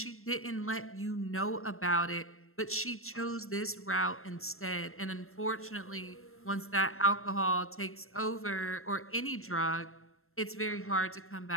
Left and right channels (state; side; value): late; right; 0.62 ms